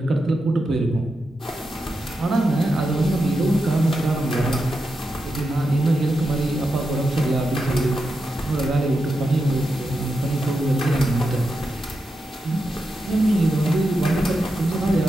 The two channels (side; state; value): both; normal; correlation 0.87